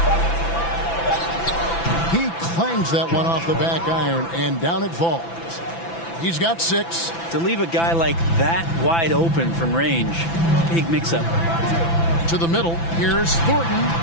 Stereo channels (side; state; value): right; late; 6.0 ms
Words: He clangs that one off the back iron, and down it falls. He's got 6. To leave a guy like that wide open from range, big mix-up. To the middle, here's Thornton,